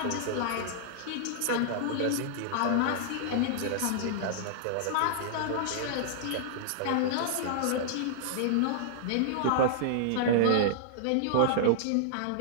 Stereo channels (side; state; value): both; different; correlation -0.01